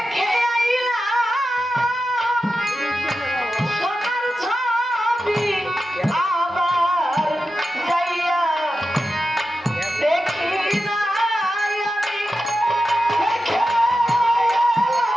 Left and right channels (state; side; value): normal; both; correlation 0.91